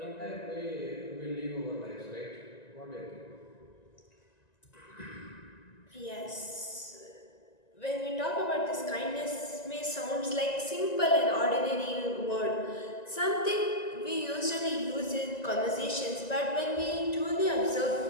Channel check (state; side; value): late; right; 1.9 ms